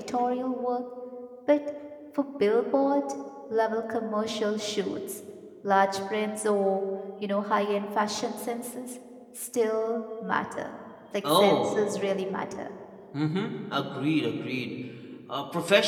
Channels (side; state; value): both; identical; correlation 1.00